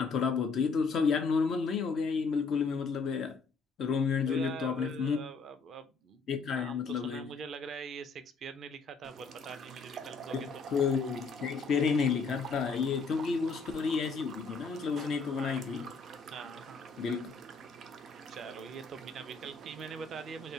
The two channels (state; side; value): quieter; right; 4.7 dB